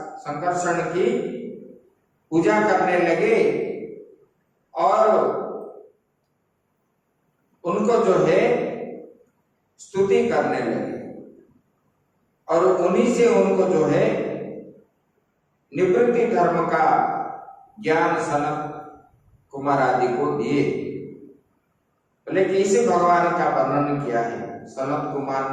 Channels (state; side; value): identical; both; correlation 1.00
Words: संकर्षण की पूजा करने लगे और उनको जो है स्तुति करने लगे और उन्हीं से उनको जो है निवृत्ति धर्म का ज्ञान सनत कुमार आदि को दिए। लेकिन इसे भगवान का वर्णन किया है। सनत कुमार